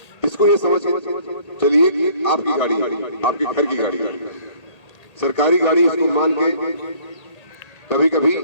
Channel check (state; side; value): late; right; 1.8 ms